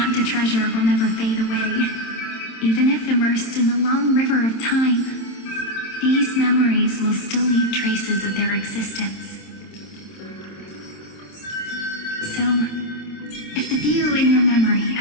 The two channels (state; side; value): late; right; 27 ms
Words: to treasure will never fade away. Even if immersed in the long river of time, these memories will still leave traces of their existence. So, if the view in your memory